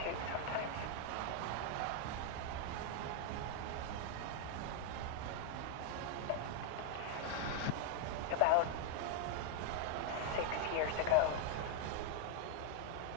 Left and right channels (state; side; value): different; both; correlation 0.00